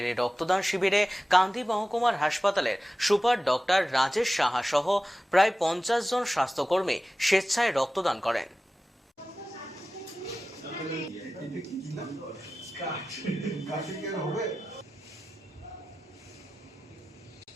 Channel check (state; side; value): normal; both; correlation 0.95